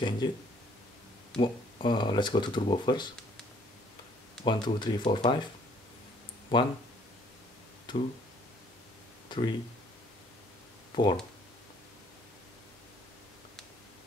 it. Let's go to turbo first. 1, 2, 3, 4, 5. 1, 2, 3, 4.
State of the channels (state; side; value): normal; both; correlation 0.61